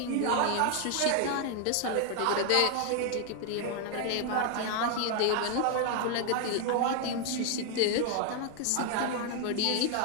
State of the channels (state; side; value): different; both; correlation 0.00